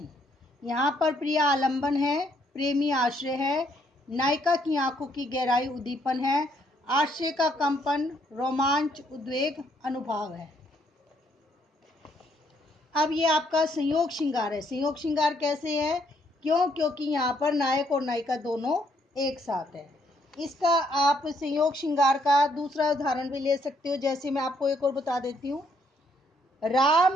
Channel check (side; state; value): both; normal; correlation 0.70